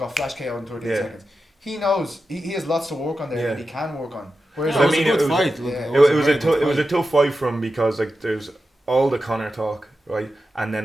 flash KO in 13 Yeah. seconds. He knows he has lots to work on there, Yeah. and he can work on. Whereas It was I mean, a good it was- fight. Look, yeah. It a was very a good it was a fight. tough fight for him because like there's all the Conor talk, right? And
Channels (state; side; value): normal; both; correlation 0.91